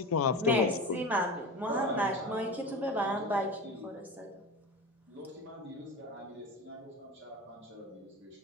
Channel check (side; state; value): both; normal; correlation 0.28